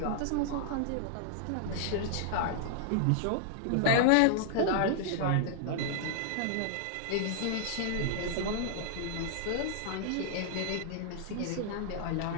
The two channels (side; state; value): both; different; correlation -0.01